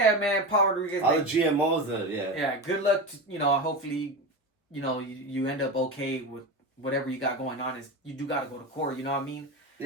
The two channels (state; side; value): normal; both; correlation 0.22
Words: man, Paul Rodriguez. All the GMOs, Yeah, good luck. Hopefully, you end up okay with whatever you got going on. Is you do got to go to court. You know what I mean?